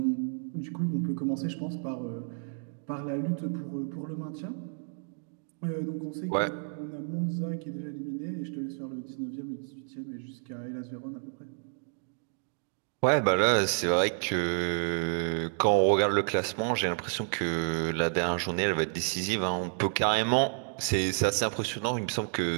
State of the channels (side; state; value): left; silent; 57 dB below the other